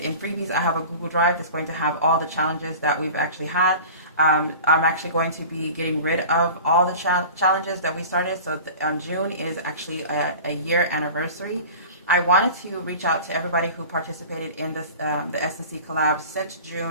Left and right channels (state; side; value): inverted; both; correlation -0.38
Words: in freebies, I have a Google Drive that's going to have all the challenges that we've actually had. I'm actually going to be getting rid of all the challenges that we started. So June is actually a year anniversary. I wanted to reach out to everybody who participated in this the SNC collab since